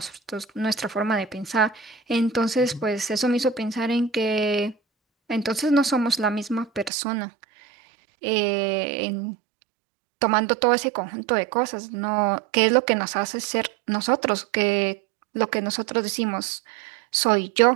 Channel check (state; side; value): drops out; left; at 6.9 s